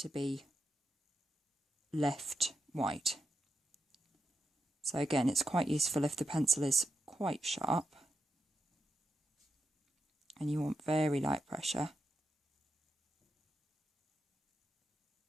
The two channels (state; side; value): normal; both; correlation 0.85